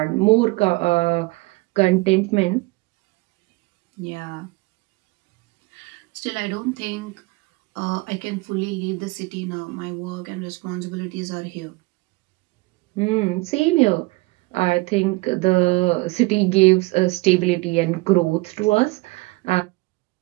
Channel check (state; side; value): quieter; left; 23.6 dB